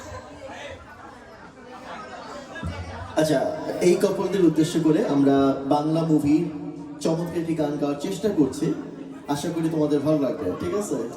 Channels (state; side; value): identical; both; correlation 1.00